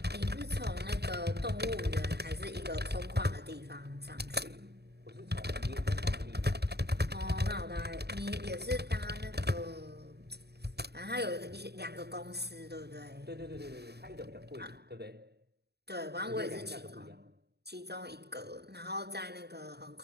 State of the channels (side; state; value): left; late; 0.48 ms